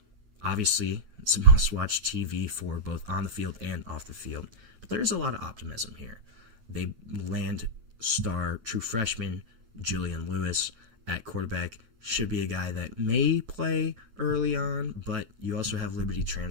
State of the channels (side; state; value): left; late; 9.2 ms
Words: Obviously, it's a must-watch TV for both on the field and off the field. But there's a lot of optimism here. They land star true freshman Julian Lewis at quarterback. Should be a guy that may play early on, but you also have Liberty